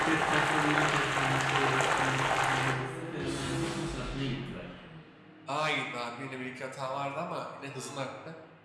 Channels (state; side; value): identical; both; correlation 1.00